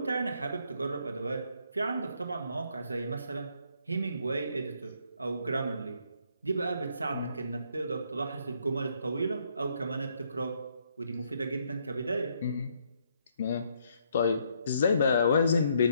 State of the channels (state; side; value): inverted; both; correlation -0.71